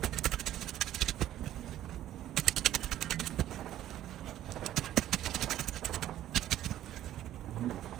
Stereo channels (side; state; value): left; quieter; 12.6 dB